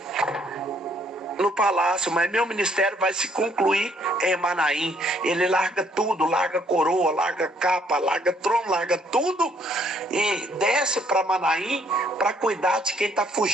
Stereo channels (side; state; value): both; normal; correlation 0.66